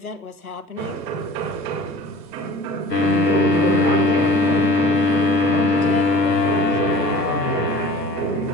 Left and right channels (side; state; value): both; normal; correlation 0.43